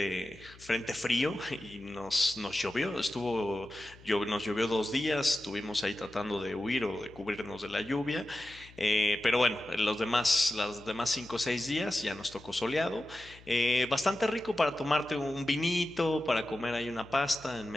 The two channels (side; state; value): left; noise; hum, 22 dB below the sound